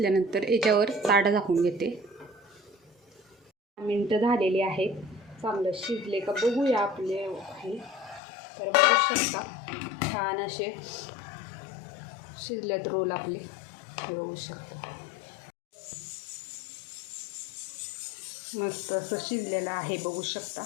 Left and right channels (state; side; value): drops out; right; at 8.2 s